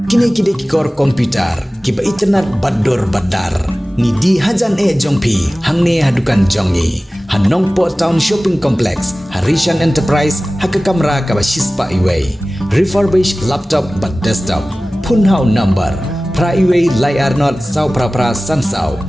kor komputer kiba internet bador badar ni di hajan jongpi hangne hadukan jongi hanongpo town shopping complex Harishan Enterprise haka kamera kaba shispa iway refurbished laptop but desktop punhau number pra iway layar not sau pra sansau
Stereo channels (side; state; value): both; normal; correlation 0.97